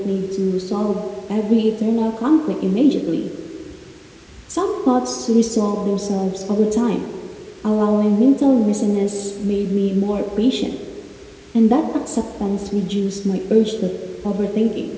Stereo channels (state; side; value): identical; both; correlation 1.00